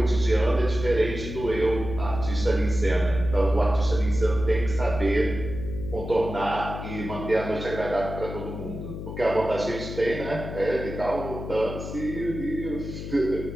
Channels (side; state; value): left; noise; hum, 8 dB below the sound